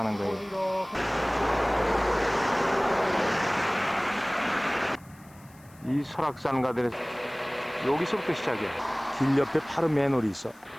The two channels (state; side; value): noise; left; hiss, 27 dB below the sound